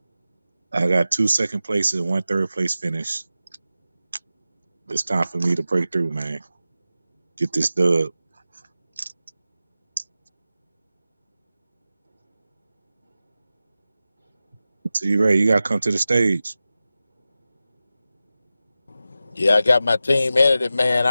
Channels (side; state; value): both; inverted; correlation -0.94